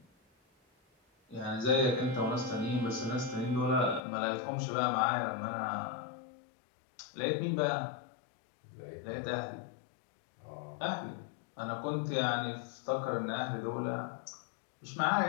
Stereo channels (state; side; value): drops out; right; at 4.0 s